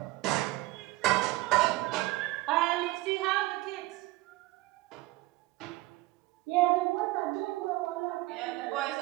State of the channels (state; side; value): quieter; left; 19.3 dB